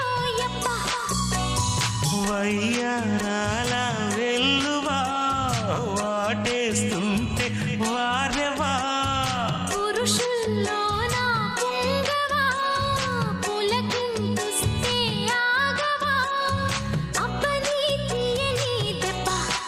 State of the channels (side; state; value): both; identical; correlation 1.00